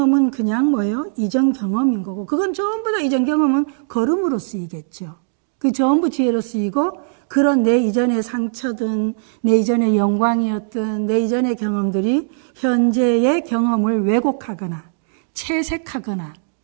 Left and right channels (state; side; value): silent; left; digital silence